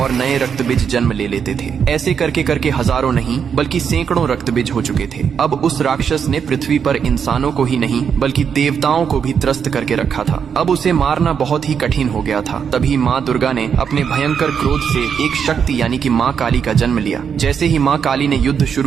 नए रक्तबीज जन्म ले लेते थे। ऐसे करके करके हजारों नहीं बल्कि सैकड़ों रक्तबीज हो चुके थे। अब उस राक्षस ने पृथ्वी पर इंसानों को ही नहीं बल्कि देवताओं को भी त्रस्त करके रखा था। अब उसे मारना बहुत ही कठिन हो गया था। तभी माँ दुर्गा ने अपने भयंकर क्रोध से एक शक्ति यानी कि माँ काली का जन्म लिया। जैसे ही माँ काली ने युद्ध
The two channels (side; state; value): left; quieter; 7.1 dB